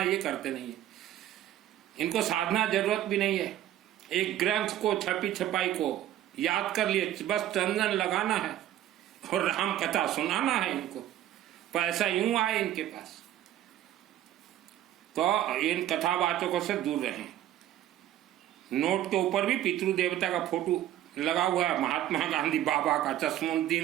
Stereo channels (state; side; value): quieter; left; 12.5 dB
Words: ये करते नहीं है। इनको साधना जरूरत भी नहीं है। एक ग्रंथ को छपी छपाई को याद कर लिए, बस चंदन लगाना है और राम कथा सुनाना है इनको। पैसा यूं आए इनके पास। तो इन कथावाचकों से दूर रहें। नोट के ऊपर भी पितृ देवता का फोटो लगा हुआ है, महात्मा गांधी बाबा का,